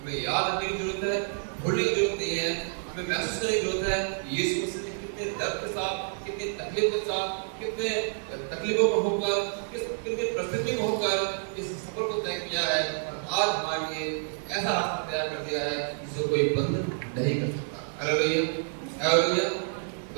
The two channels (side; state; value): left; silent; digital silence